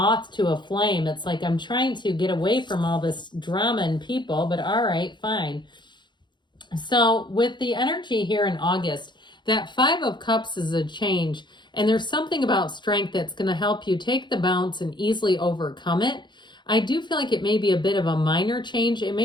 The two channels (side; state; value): right; late; 0.22 ms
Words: to a flame. It's like, I'm trying to get away from all this drama and people, but all right, fine. So with the energy here in August, that Five of Cups is a change. And there's something about strength that's going to help you take the bounce and easily overcome it. I do feel like it may be a bit of a minor change. It